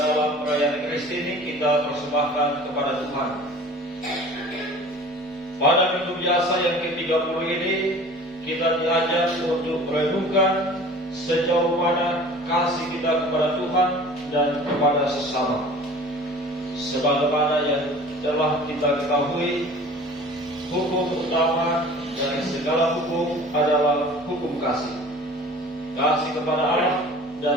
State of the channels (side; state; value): both; normal; correlation 0.44